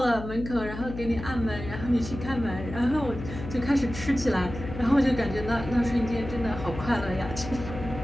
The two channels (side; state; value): left; noise; hum, 9 dB below the sound